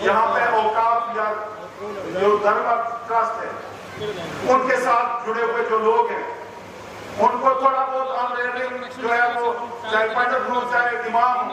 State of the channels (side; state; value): both; identical; correlation 1.00